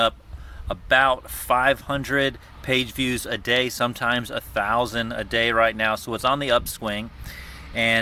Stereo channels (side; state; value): both; identical; correlation 1.00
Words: about 500 page views a day, sometimes 1,000 a day right now. So it's on the upswing.